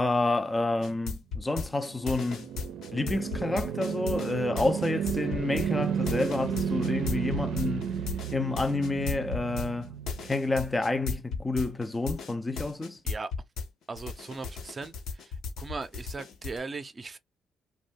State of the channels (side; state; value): both; normal; correlation 0.79